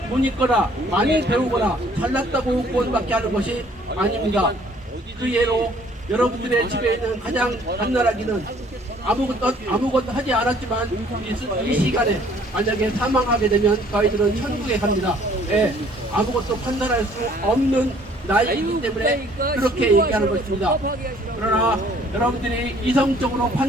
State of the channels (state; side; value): normal; both; correlation 0.58